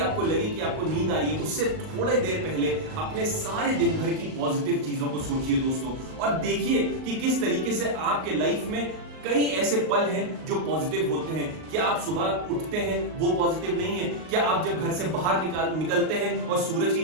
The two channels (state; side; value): late; left; 38 ms